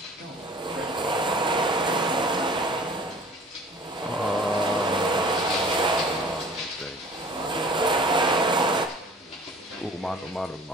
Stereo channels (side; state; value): both; normal; correlation 0.47